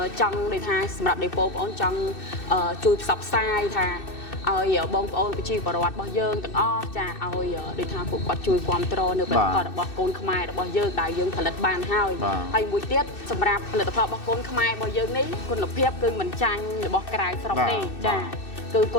ចង់ដូចថាសម្រាប់ដេប៉ូបងអូនចង់ជួយផ្សព្វផ្សាយថាឲ្យបងប្អូនប្រជាពលរដ្ឋរបស់យើងទាំងអស់ចាឲ្យដូចថាពួកគាត់ជួយគ្រប់គ្រងនៅផលិតផលរបស់កូនខ្មែររបស់យើងដែលយើងផលិតបានហើយមួយទៀតសម្រាប់ផលិតផលរបស់កូនខ្មែររបស់យើងនេះគុណភាពគឺមិនចាញ់របស់ក្រៅស្រុកទេចាគឺគ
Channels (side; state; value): right; late; 2.6 ms